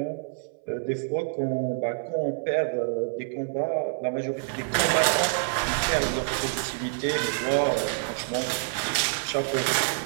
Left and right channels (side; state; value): left; silent; 60 dB below the other